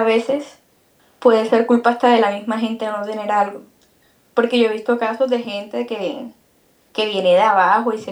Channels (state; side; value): identical; both; correlation 1.00